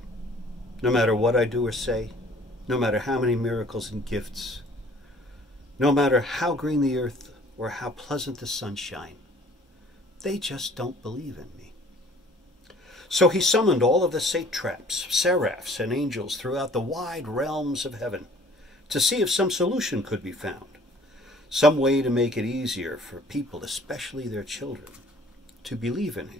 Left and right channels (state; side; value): normal; both; correlation 0.54